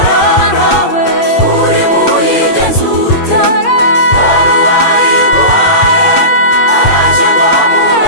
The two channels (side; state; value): right; late; 8.7 ms